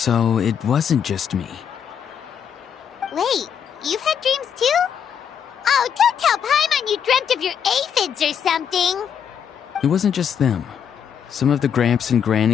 it wasn't just me. Wait, you've had dreams too? Oh, don't tell Paimon you dreamt of your aphids or something. It wasn't just them. Some of the Gramps and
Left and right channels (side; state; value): right; quieter; 8.0 dB